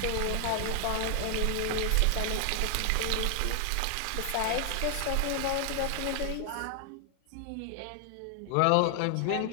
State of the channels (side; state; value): both; different; correlation 0.00